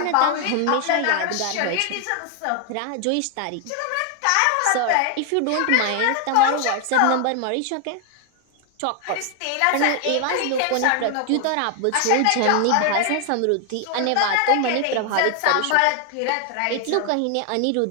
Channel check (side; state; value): both; different; correlation 0.00